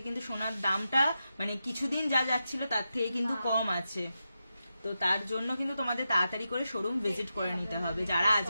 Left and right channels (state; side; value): inverted; both; correlation -0.89